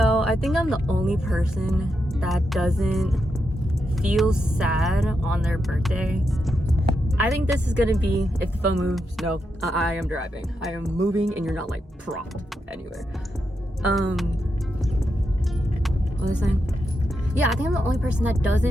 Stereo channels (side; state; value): both; normal; correlation 0.84